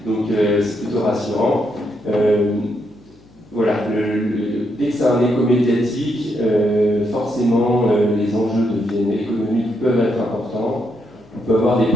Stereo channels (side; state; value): left; noise; hum, 28 dB below the sound